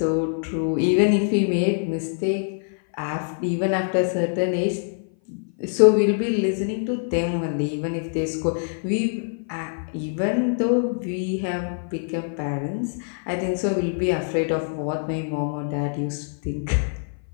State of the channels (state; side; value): silent; right; 57 dB below the other